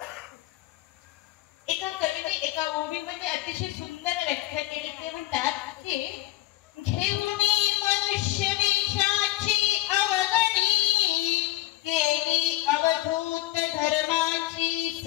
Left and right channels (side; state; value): right; quieter; 17.2 dB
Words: एका कवीने एका ओवीमध्ये अतिशय सुंदर व्याख्या केली। ते म्हणतात की घेऊनी मनुष्य वेशाची अवगणी केली अवधूत धर्माची